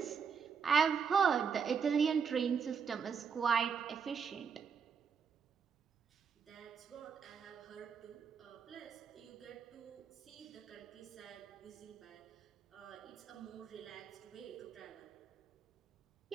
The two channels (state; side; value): quieter; left; 6.4 dB